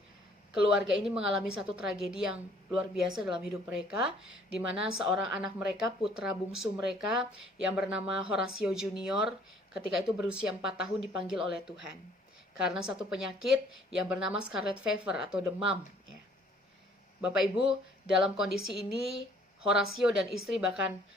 keluarga ini mengalami satu tragedi yang luar biasa dalam hidup mereka, di mana seorang anak mereka, putra bungsu mereka yang bernama Horatio Junior, ketika itu berusia 4 tahun dipanggil oleh Tuhan karena satu penyakit yang bernama scarlet fever atau demam. Bapak Ibu, dalam kondisi ini Horatio dan istri bahkan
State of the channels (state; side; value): normal; both; correlation 0.59